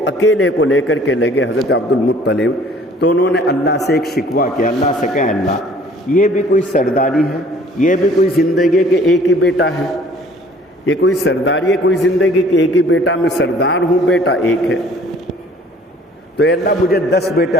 اکیلے کو لے کر کے لگے حضرت عبد المطلب، تو انہوں نے اللہ سے ایک شکوہ کیا. اللہ سے کہا اللہ یہ بھی کوئی سرداری ہے، یہ بھی کوئی زندگی کے ایک ہی بیٹا ہے، یہ کوئی سرداری ہے کوئی زندگی کے ایک ہی بیٹا، میں سردار ہوں، بیٹا ایک ہے. تو اے اللہ مجھے 10 بیٹے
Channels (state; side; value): normal; both; correlation 0.54